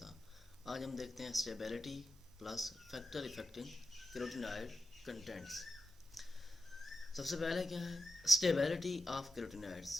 आज हम देखते हैं stability plus factor affecting carotenoid contents. सबसे पहले क्या है स्टेबिलिटी ऑफ कैरोटीनॉइड्स।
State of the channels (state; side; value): normal; both; correlation 0.90